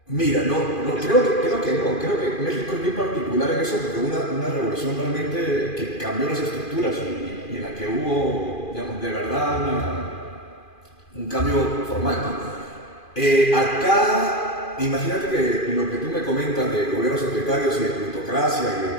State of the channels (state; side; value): late; right; 2.4 ms